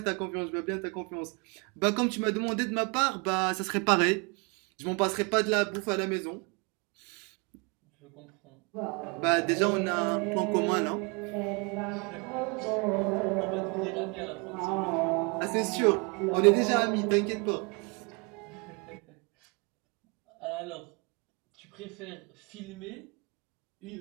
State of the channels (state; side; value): quieter; left; 31.9 dB